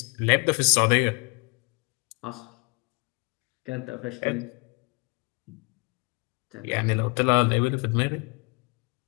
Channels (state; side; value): quieter; right; 32.4 dB